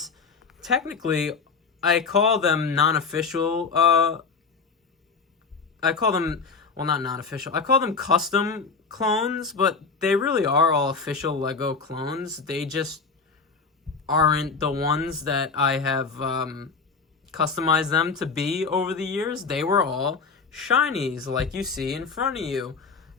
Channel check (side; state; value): right; quieter; 4.9 dB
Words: technically I call them non-official, I call them, well, not non-official, I call them custom clones, but they really are all official LEGO clones. They just aren't the ones that I have customized them to be over the years. They were all shinies like you see in front of you.